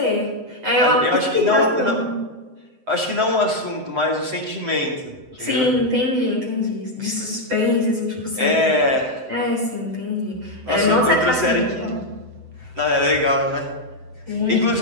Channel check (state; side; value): late; left; 7.8 ms